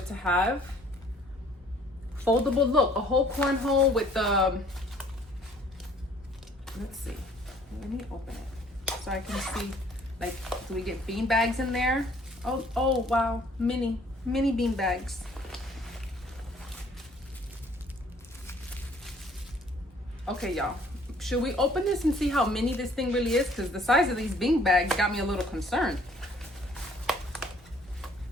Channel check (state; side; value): normal; both; correlation 0.58